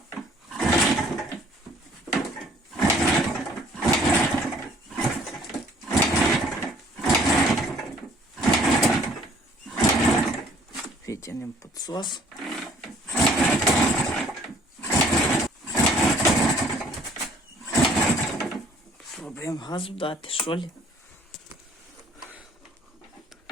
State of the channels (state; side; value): normal; both; correlation 0.57